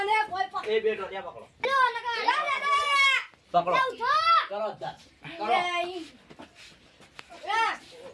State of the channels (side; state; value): both; identical; correlation 1.00